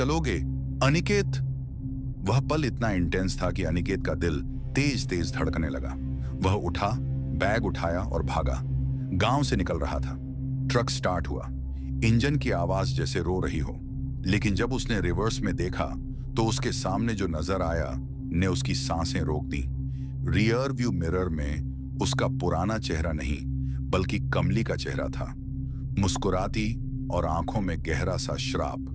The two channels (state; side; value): identical; both; correlation 1.00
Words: अनिकेत। वह पल इतना इंटेंस था कि अनिकेत का दिल तेज तेज धड़कने लगा। वह उठा, बैग उठाया और भागा। गांव से निकल रहा था। ट्रक स्टार्ट हुआ, इंजन की आवाज जैसे रो रही हो। लेकिन जब उसने रिवर्स में देखा तो उसके सामने जो नजर आया ने उसकी सांसें रोक दी। रियर व्यू मिरर में उसका पुराना चेहरा नहीं, बल्कि कमली का चेहरा था, मुस्कुराती और आंखों में गहरा सा